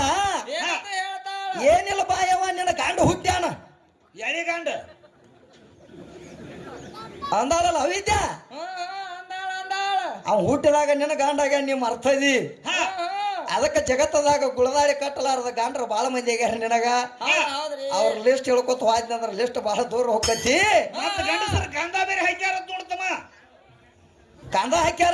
ಏನಿಲ್ಲ ಬಾಯವ ನಿನ್ನ ಗಂಡ ಹುಟ್ಟ್ಯಾನ ಗಂಡ ಅಂದಾಳಲ್ಲ ಅವಿದ್ಯಾ ಅವ್ ಹುಟ್ಟಿದಾಗ ನಿನ್ನ ಗಂಡಾಗ ನೀ ಮರ್ತದಿ ಅದಕ್ಕೆ ಜಗತ್ತದಾಗ ಗುಳದಾಳಿ ಕಟ್ಟಲಾರದ ಗಂಡ್ರ ಬಾಳ ಮಂದಿ ಆಗ್ಯಾರ ನಿನಗ ಅವ್ರ ಲಿಸ್ಟ್ ಹೇಳ್ಕೊತ ಹೋದ್ನಂದ್ರ ಲಿಸ್ಟ್ ಬಹಳ ದೂರ ಹೋಗತಿ ಗಂಧ ಬೇರೆ ಹಾಕ್ಯಾರ ನೋಡ್ತಮ್ಮ ಕಂದ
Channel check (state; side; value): identical; both; correlation 1.00